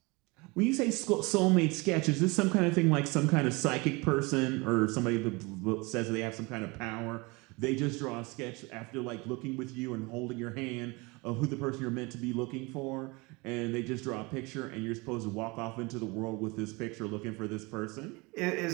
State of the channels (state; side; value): quieter; left; 25.9 dB